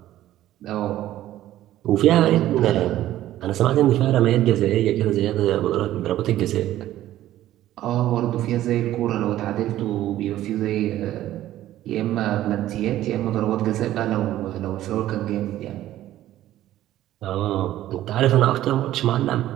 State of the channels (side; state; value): left; quieter; 13.7 dB